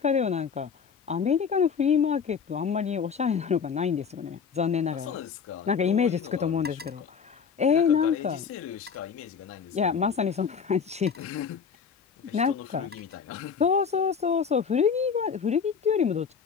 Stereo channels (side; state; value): right; quieter; 6.4 dB